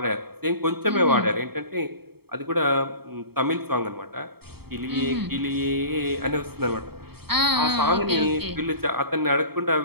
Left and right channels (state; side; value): late; left; 0.96 ms